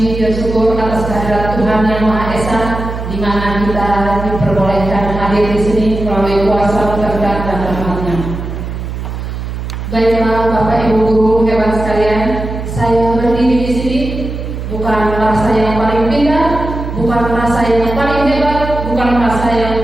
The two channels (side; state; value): right; noise; hum, 6 dB below the sound